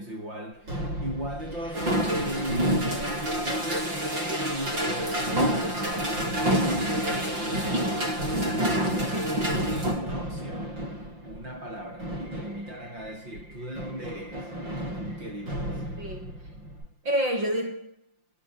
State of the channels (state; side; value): late; left; 5.7 ms